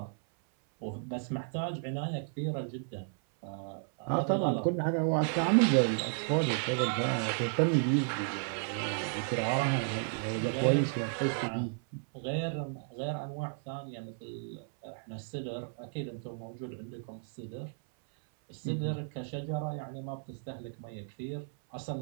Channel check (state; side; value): silent; left; 56 dB below the other